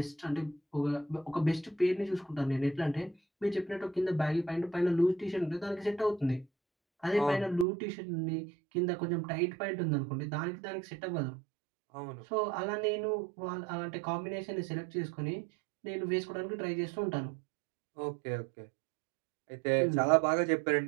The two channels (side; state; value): left; drops out; at 7.7 s